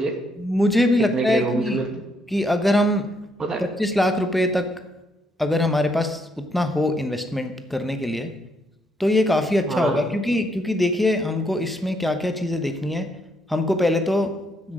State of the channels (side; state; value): both; normal; correlation 0.74